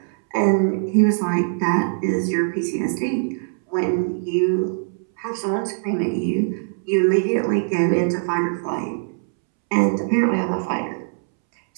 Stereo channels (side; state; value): left; silent; 64 dB below the other